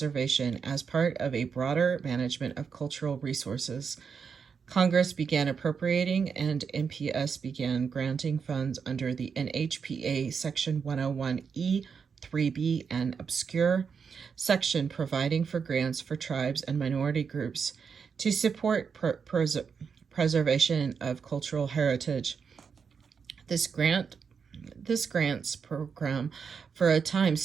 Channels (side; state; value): left; quieter; 6.1 dB